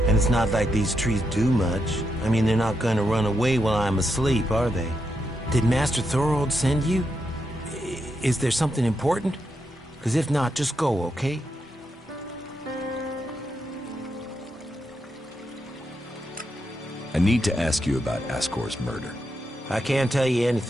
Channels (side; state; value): both; normal; correlation 0.83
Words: And it's not like these trees do much. I mean, they're not going to run away while I'm asleep, are they? Did Master Thorold send you? Is there something important? Because if not, just go, okay? I need to ask you about Ascor's murder. I can't tell you